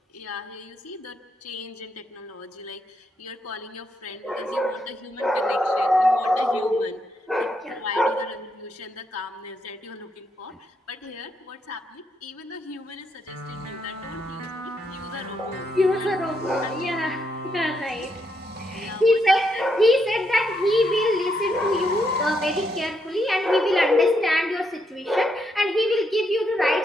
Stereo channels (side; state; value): both; normal; correlation 0.78